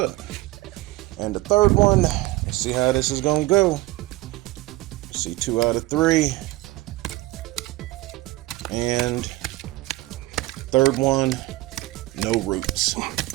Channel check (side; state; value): left; quieter; 18.8 dB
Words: And the third one, let's see how this is gonna go. See, 2 out of 3. And third one, no roots.